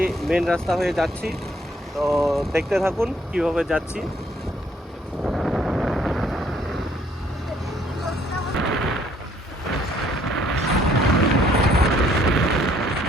মেন রাস্তা হয়ে যাচ্ছি। তো দেখতে থাকুন কিভাবে যাচ্ছি।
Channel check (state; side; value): normal; both; correlation 0.65